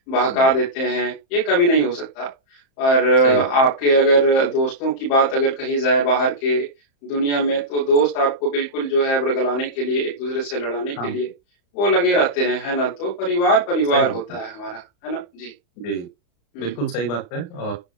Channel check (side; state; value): right; late; 35 ms